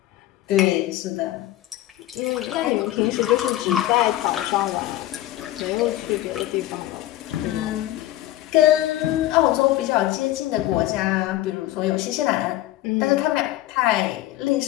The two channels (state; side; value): quieter; right; 14.9 dB